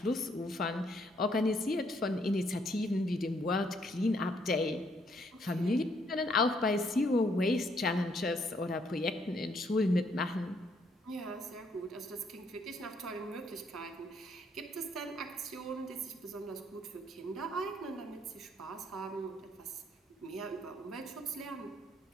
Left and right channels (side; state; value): both; normal; correlation 0.70